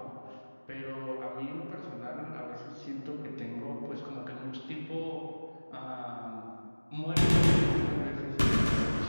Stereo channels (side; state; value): both; inverted; correlation -1.00